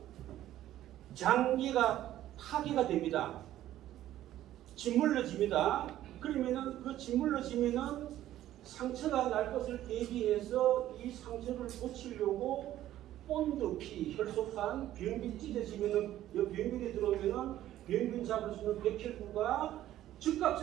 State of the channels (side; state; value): left; quieter; 13.2 dB